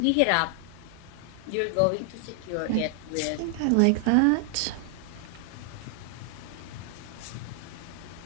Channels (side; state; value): both; different; correlation 0.00